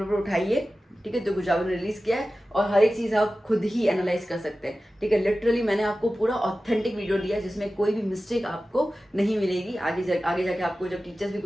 उठाइए, ठीक है, जो गुजरात ने रिलीज किया है, और हर एक चीज़ आप खुद ही एनालाइज कर सकते हैं, ठीक है। लिटरली मैंने आपको पूरा ऑथेंटिक वीडियो दिया जिसमें कोई भी मिस्टेक आपको नहीं मिलेगी। आगे जाके आपको जब टीचर्स भी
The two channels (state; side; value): normal; both; correlation 0.95